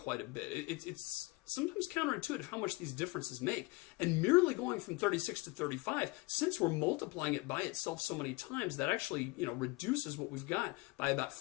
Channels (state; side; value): quieter; right; 23.1 dB